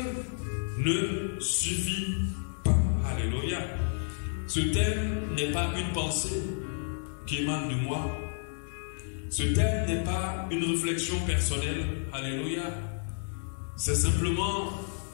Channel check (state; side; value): silent; right; digital silence